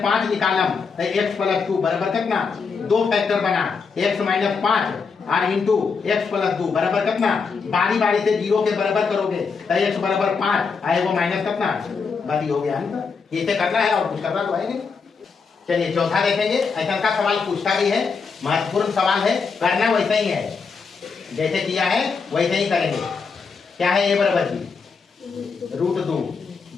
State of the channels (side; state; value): right; quieter; 5.2 dB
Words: 5 निकालम x प्लस 2 बराबर कितना, दो फैक्टर बना x माइनस 5 और इंटू एक्स प्लस 2 बराबर कितना, बारी बारी से 0 के बराबर करोगे तो x बराबर 5 आए वो माइनस कितना, बारी हो गया है। इसे करना है और कुछ करना तो है नहीं। चलिए चौथा देखेंगे। ऐसा का सवाल पूछता भी है, महत्वपूर्ण सवाल है, करना वैसा ही है जैसे किया है वैसे ही करेंगे। क्या है? ए बराबर बी रूट 2,